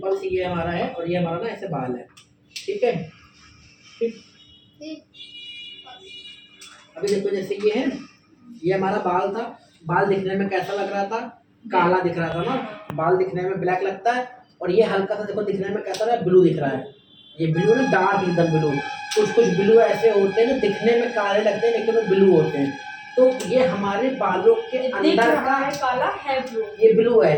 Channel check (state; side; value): identical; both; correlation 1.00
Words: सी ये हमारा है और ये हमारा ना ऐसे बाल है। ठीक है, ठीक। अभी देखो जैसे ये है, ये हमारा बाल था, बाल दिखने में कैसा लग रहा था, काला दिख रहा था ना, बाल दिखने में ब्लैक लगता है। और ये हल्का सा देखो दिखने में कैसा रहा है, ब्लू दिख रहा है। ये ब्लू ना डार्क एकदम ब्लू। कुछ कुछ ब्लू ऐसे होते हैं ना दिखने में काले लगते हैं लेकिन वो ब्लू होते हैं। तो ये हमारे बालों के अंदर का है काला है ब्लू, ये ब्लू